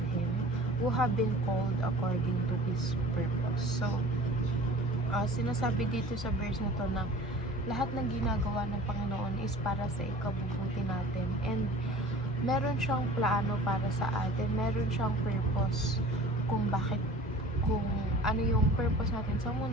Him, who have been called according to His purpose. So, sinasabi dito sa verse na to na lahat ng ginagawa ng Panginoon is para sa ikabubuti natin, and meron siyang plano para sa atin, meron siyang purpose kung ano yung purpose natin sa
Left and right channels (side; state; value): both; normal; correlation 0.43